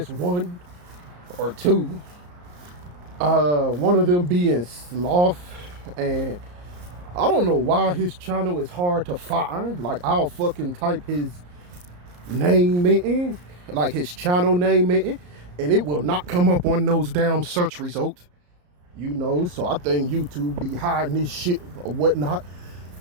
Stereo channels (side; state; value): left; late; 34 ms